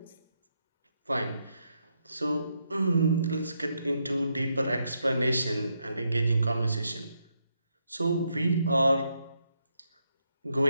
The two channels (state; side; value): inverted; both; correlation -0.79